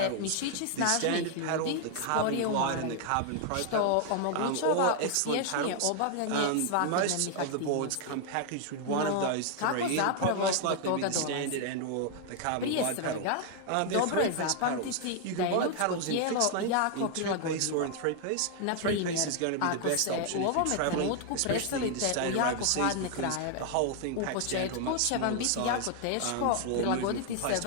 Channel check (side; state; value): both; different; correlation 0.00